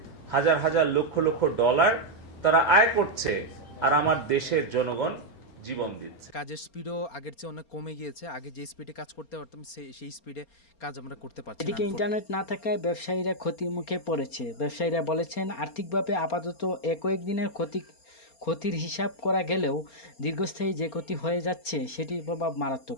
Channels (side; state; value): right; late; 4.3 ms